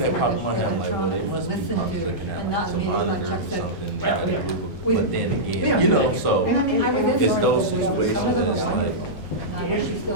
that popped in my head, I'm like, well, they must be Listen probably to looking at and like not some immediately, monitor like or Chuck said. something, that got a group of, We- but then again, you know, so, And I mean, I was in it's there. those situations that it's like, And I wish you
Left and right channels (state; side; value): late; right; 3.4 ms